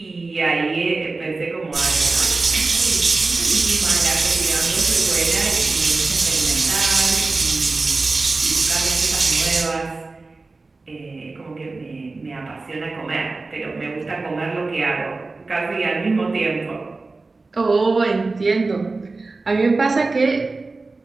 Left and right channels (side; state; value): left; quieter; 3.6 dB